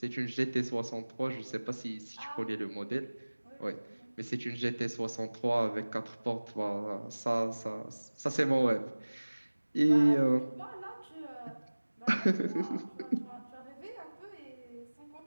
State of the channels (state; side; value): inverted; both; correlation -1.00